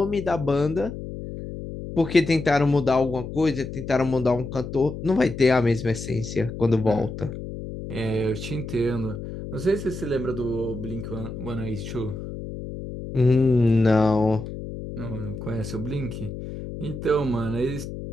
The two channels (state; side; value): noise; left; hum, 9 dB below the sound